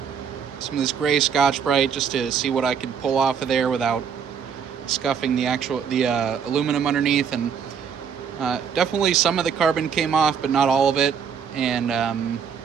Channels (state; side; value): quieter; left; 7.2 dB